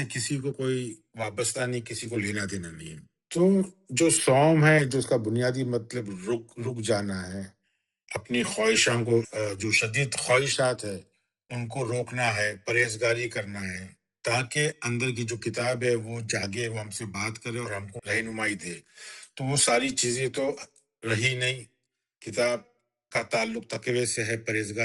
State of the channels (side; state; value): both; identical; correlation 1.00